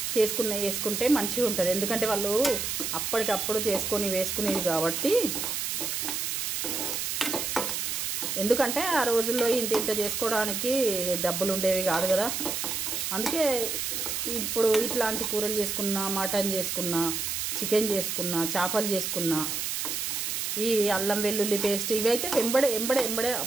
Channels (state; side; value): noise; right; hiss, 2 dB below the sound